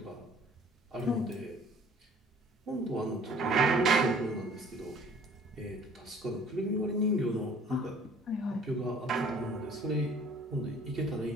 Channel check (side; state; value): both; normal; correlation 0.53